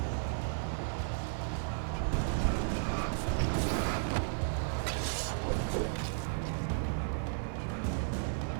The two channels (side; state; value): left; silent; digital silence